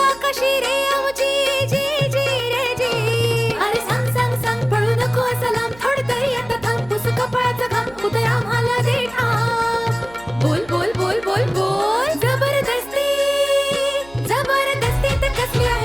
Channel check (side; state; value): right; noise; hum, 23 dB below the sound